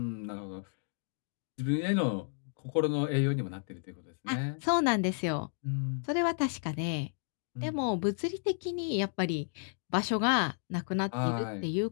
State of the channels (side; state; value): right; silent; 56 dB below the other